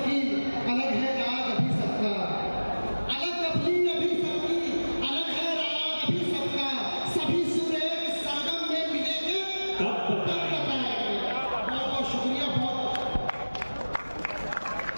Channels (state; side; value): inverted; both; correlation -1.00